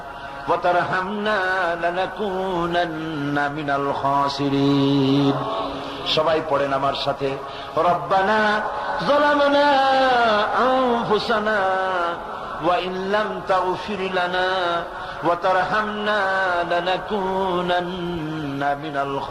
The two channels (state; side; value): identical; both; correlation 1.00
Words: ওয়া তারহামনা লানাকুনান্না মিনাল খাসিরিন। সবাই পড়েন আমার সাথে, রব্বানা যালামনা আনফুসানা ওয়া ইন লাম তাগফির লানা ওয়া তারহামনা লানাকুনান্না মিনাল